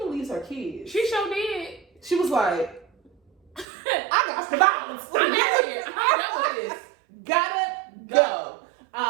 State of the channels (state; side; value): drops out; left; at 3.7 s